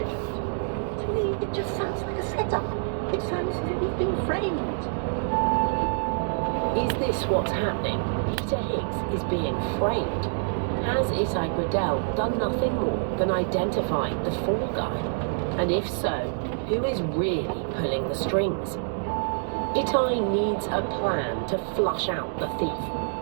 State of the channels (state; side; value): silent; left; digital silence